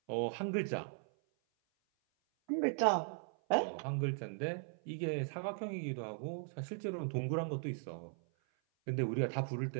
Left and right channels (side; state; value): left; silent; 52 dB below the other